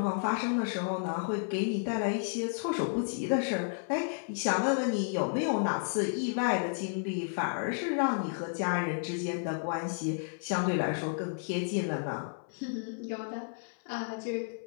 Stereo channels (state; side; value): silent; right; 56 dB below the other